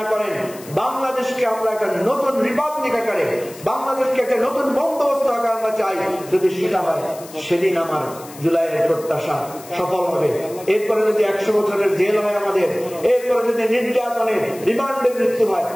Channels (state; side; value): noise; left; hiss, 18 dB below the sound